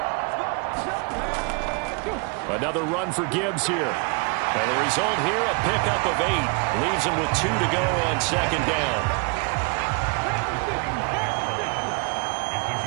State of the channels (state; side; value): quieter; left; 32.5 dB